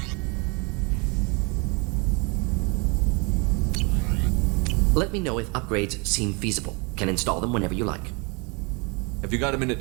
Let me know if upgrades seem feasible. Can install them whenever you like. Have you got a minute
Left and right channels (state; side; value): quieter; left; 30.7 dB